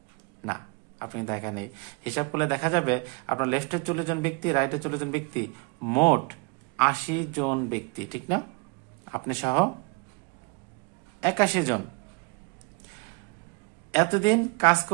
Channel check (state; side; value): quieter; left; 31.5 dB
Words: না, আপনি একা নেই। হিসাব করলে দেখা যাবে আপনার লেফটে 40 জন ব্যক্তি, রাইটে 40 জন ব্যক্তি, মোট 80 জন ব্যক্তি, ঠিক না? আপনি সহ 81 জন। এতদিন কাজ